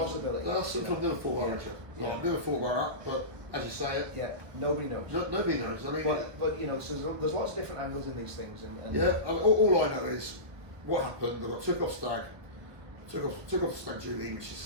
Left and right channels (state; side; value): late; left; 1.2 ms